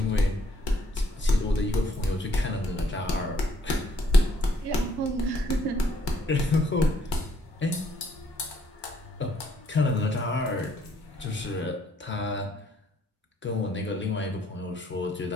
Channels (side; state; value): both; normal; correlation 0.67